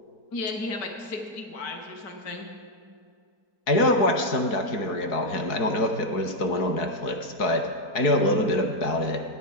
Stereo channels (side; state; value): right; late; 4.5 ms